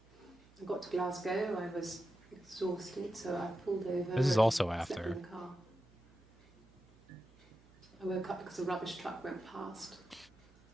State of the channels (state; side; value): noise; right; hum, 27 dB below the sound